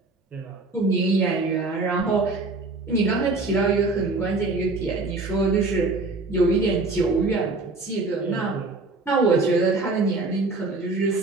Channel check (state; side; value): quieter; left; 3.4 dB